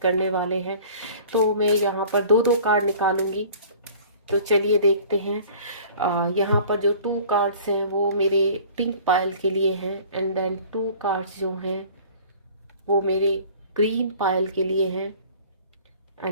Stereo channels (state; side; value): inverted; both; correlation -0.47